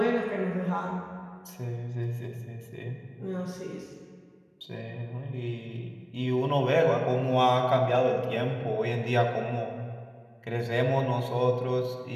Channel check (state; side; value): identical; both; correlation 1.00